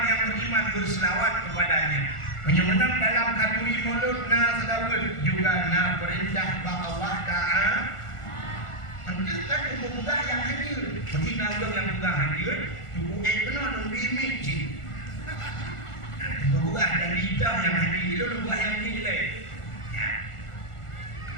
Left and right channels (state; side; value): late; right; 1.4 ms